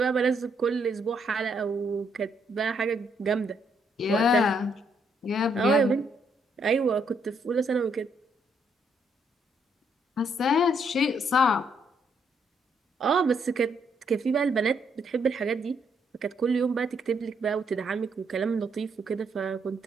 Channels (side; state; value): both; normal; correlation 0.73